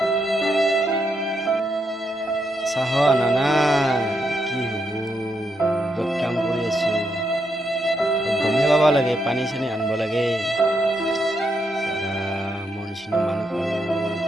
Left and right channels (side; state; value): both; normal; correlation 0.80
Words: চাহ আনা নাই, কি হ'ব? য'ত কাম কৰি আছো গমেই পাব লাগে, পানী চানী আনিব লাগে। মোৰ নিচিনা মানুহ আৰু